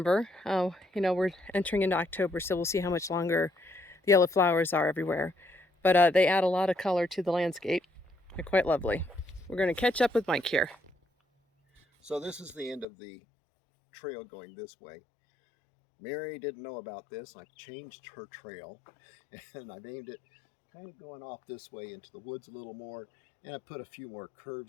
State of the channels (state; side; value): drops out; right; at 12.9 s